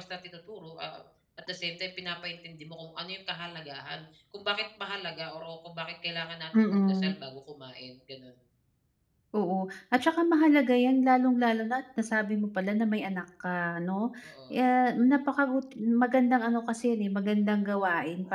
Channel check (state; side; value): identical; both; correlation 1.00